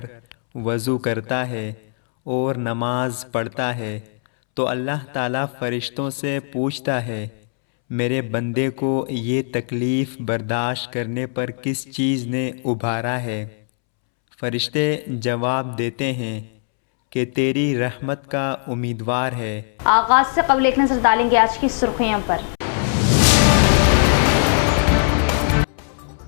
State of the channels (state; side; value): silent; right; 65 dB below the other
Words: वज़ू करता है और नमाज पढ़ता है तो अल्लाह ताला फ़रिश्तों से पूछता है, मेरे बंदे को ये तकलीफ़ बर्दाश्त करने पर किस चीज़ ने उभारा है। फ़रिश्ते जवाब देते हैं कि तेरी रहमत का उम्मीदवार है। आगाज़ से कबल एक नज़र डालेंगे आज की सुर्खियों पर।